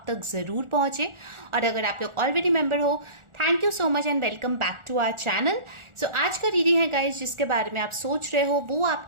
तक ज़रूर पहुंचे। और अगर आप लोग ऑलरेडी मेंबर हो, thank you so much and welcome back to our channel. So आज का रीडिंग है गाइज, जिसके बारे में आप सोच रहे हो वो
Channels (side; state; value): left; late; 1.4 ms